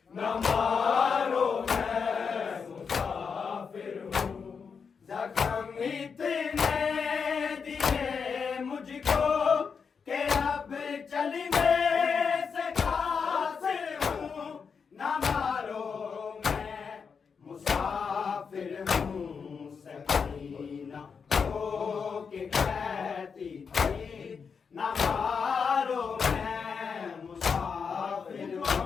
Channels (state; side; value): quieter; right; 5.9 dB